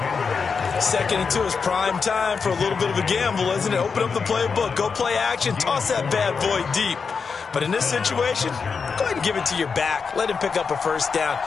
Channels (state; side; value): quieter; right; 5.4 dB